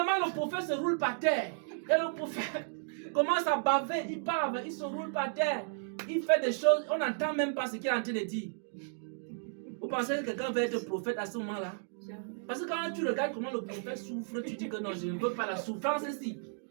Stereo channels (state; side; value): silent; left; digital silence